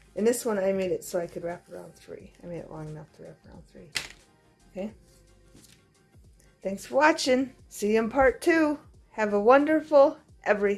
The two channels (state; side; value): identical; both; correlation 1.00